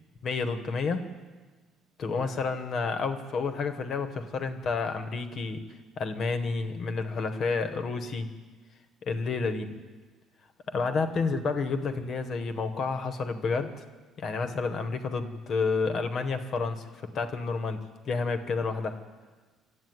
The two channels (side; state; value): right; quieter; 4.0 dB